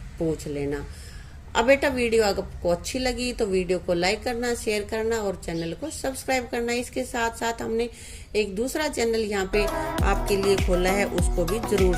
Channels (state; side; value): identical; both; correlation 1.00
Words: पूछ लेना। अब बेटा वीडियो अगर आपको अच्छी लगी तो वीडियो को लाइक करना, शेयर करना और चैनल को सब्सक्राइब करना। इसके साथ साथ हमने एक दूसरा चैनल यहाँ पे आपके लिए खोला है, उसको भी जरूर